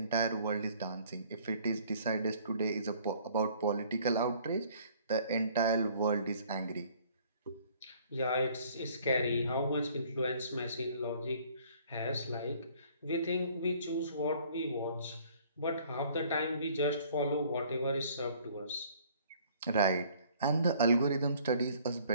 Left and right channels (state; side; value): inverted; both; correlation -0.57